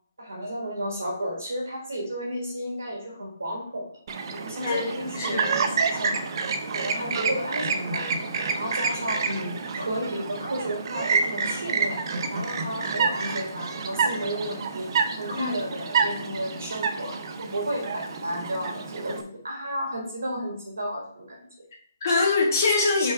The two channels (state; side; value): inverted; both; correlation -0.64